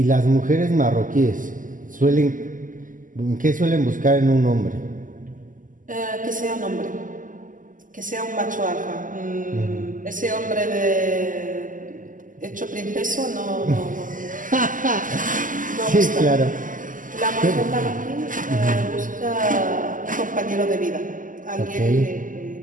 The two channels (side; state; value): left; late; 0.38 ms